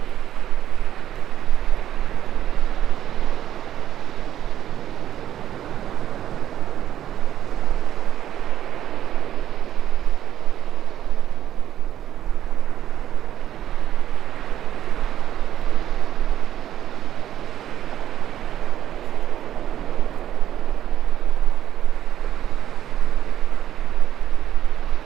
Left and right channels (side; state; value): left; quieter; 11.3 dB